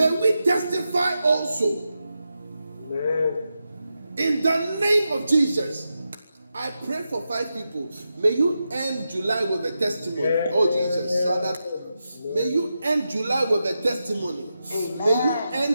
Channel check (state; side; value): inverted; both; correlation -0.89